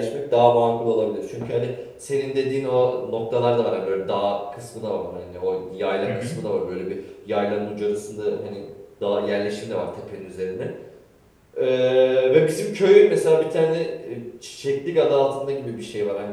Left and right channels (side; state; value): both; identical; correlation 1.00